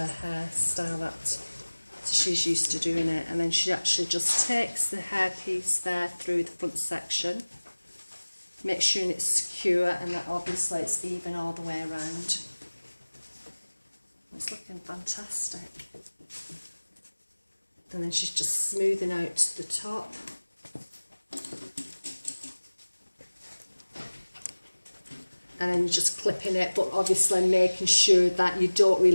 hairstyle that she's used to doing it. And then she actually just takes the hair piece there through the front section, make sure it's secure and that obviously it's even all the way around. It's looking fantastic. And then she's just smoothing out the top. And then you're just clipping it, but obviously making sure that you don't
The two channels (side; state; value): both; inverted; correlation -1.00